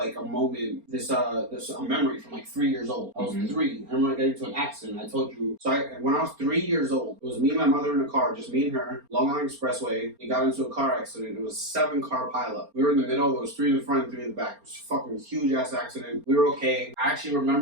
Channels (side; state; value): left; late; 4.3 ms